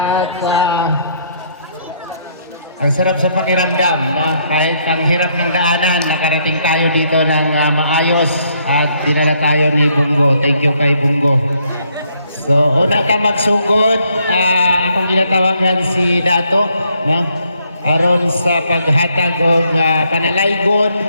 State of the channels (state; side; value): inverted; both; correlation -0.70